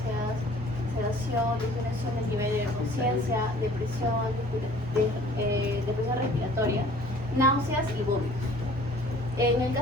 sedación, disminución del nivel de conciencia, depresión respiratoria, náuseas y vómitos. En el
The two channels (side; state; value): both; normal; correlation 0.51